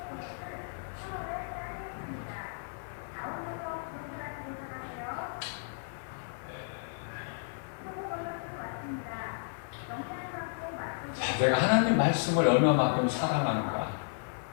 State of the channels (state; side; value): silent; right; digital silence